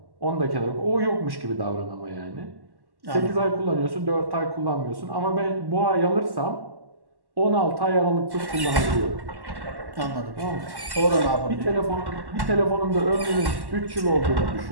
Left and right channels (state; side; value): late; left; 1.1 ms